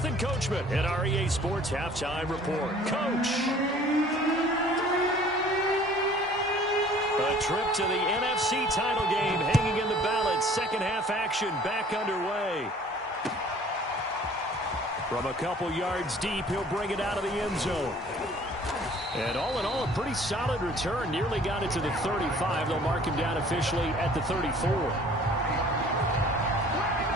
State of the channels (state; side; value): normal; both; correlation 0.52